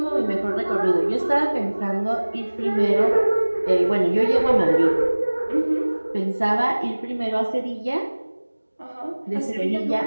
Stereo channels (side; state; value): both; inverted; correlation -1.00